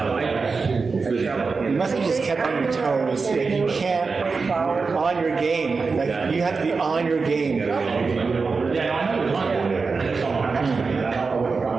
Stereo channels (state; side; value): quieter; left; 4.6 dB